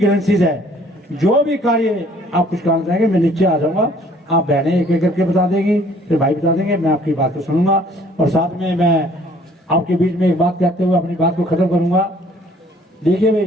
है, जो भी कार्य आप कुछ करना चाहेंगे, मैं नीचे आ जाऊंगा, आप बहनें एक एक करके बता देंगी, फिर भाई बता देंगे, मैं आपकी बात को सुनूंगा। और साथ में मैं आपके बीच में एक बात कहते हुए अपनी बात को खत्म करूंगा। देखिए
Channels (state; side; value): normal; both; correlation 0.58